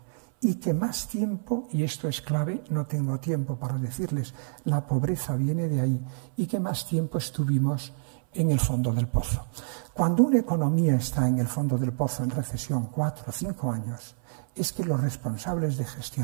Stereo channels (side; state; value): left; silent; 59 dB below the other